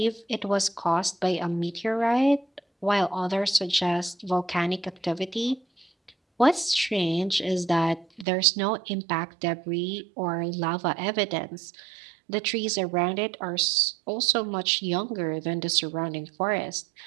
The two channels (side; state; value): left; drops out; at 8.2 s